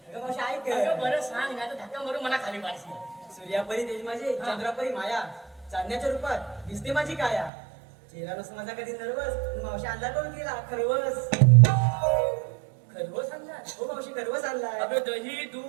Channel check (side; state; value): left; drops out; at 7.5 s